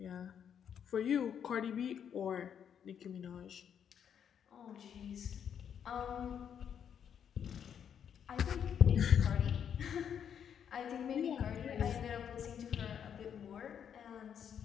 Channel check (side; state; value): right; quieter; 8.3 dB